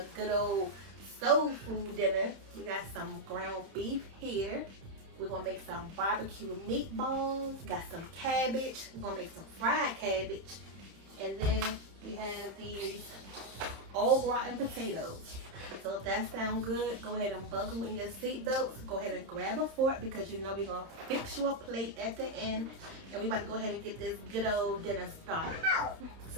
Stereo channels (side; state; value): left; late; 30 ms